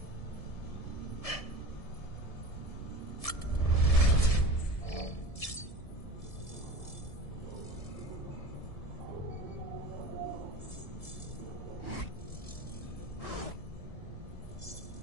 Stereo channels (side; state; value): right; late; 1.7 ms